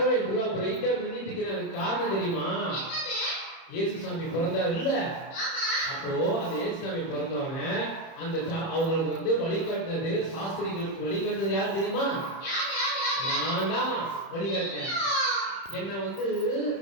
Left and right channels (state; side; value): late; right; 31 ms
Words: இவ்வளவு பிரைட்டா மின்னிட்டு இருக்கிறது காரணம் தெரியுமா? இயேசுசாமி பிறந்தார் இல்ல, அப்போ அந்த இயேசுசாமி பிறந்தவங்க அந்த அவங்களுக்கு வந்து வழிகாட்டினது, சாஸ்திரிகளுக்கு வழிகாட்டினது யாரு தெரியுமா? நான் தான் வழிகாட்டினேன். என்ன வந்து